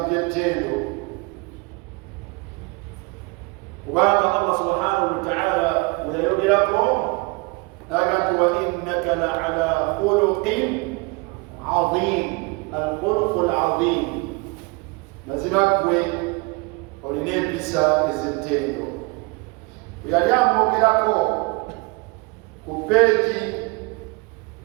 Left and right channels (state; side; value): quieter; left; 27.3 dB